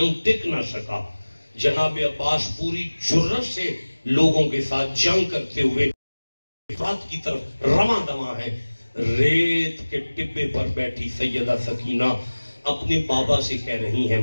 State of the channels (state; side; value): inverted; both; correlation -1.00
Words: ٹک نہ سکا. جناب عباس پوری جرأت سے لوگوں کے ساتھ جنگ کرتے ہوئے بات کی طرف رواں دواں ہے. ریت کے ٹبے پر بیٹھی سیدہ سکینہ اپنے بابا سے کہہ رہی ہیں